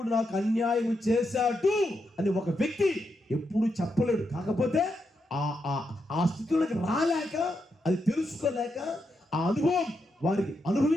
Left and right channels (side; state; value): both; normal; correlation 0.83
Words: నాకు అన్యాయం చేశాడు అని ఒక వ్యక్తి ఎప్పుడు చెప్పలేడు. కాకపోతే ఆ స్థితిలోకి రాలేక, అది తెలుసుకోలేక, ఆ అనుభవం వారికి